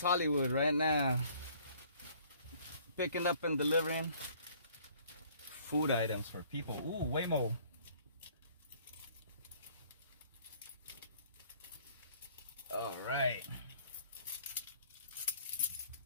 Hollywood right now, picking up and delivering food items for people. Ooh, Waymo. All right.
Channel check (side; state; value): both; inverted; correlation -0.57